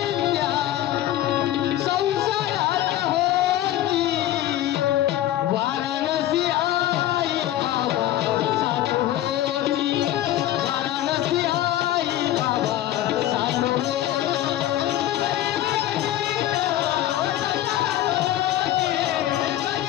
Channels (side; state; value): right; quieter; 13.5 dB